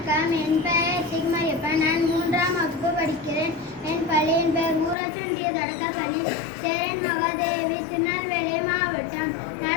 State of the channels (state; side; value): drops out; right; at 5.0 s